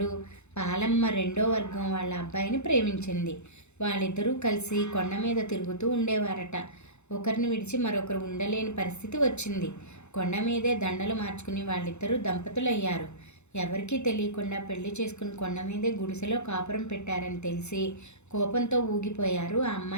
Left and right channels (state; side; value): late; right; 0.82 ms